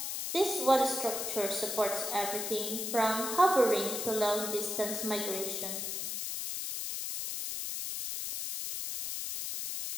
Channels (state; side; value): noise; left; hiss, 3 dB below the sound